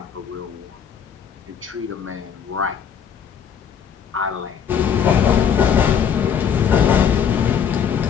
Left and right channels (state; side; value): quieter; right; 7.7 dB